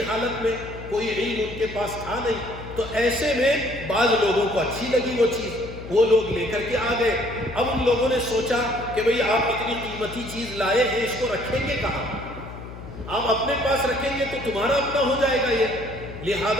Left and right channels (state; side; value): noise; left; hum, 13 dB below the sound